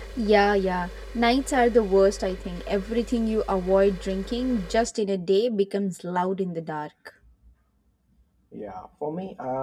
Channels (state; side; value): identical; both; correlation 1.00